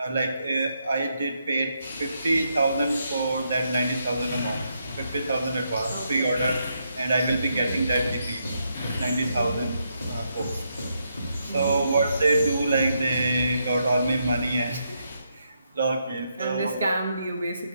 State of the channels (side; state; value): both; inverted; correlation -0.80